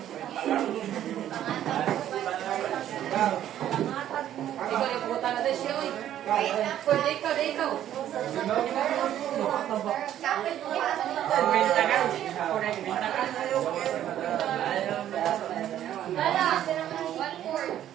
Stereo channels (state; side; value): quieter; left; 11.5 dB